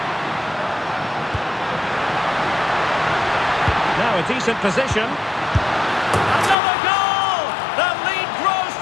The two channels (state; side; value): drops out; right; at 6.6 s